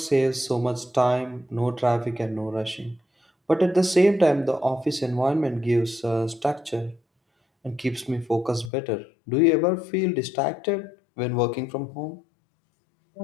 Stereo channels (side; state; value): right; drops out; at 8.7 s